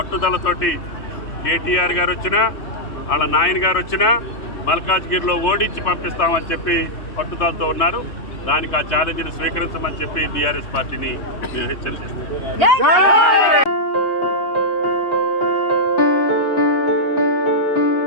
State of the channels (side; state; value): right; late; 3.3 ms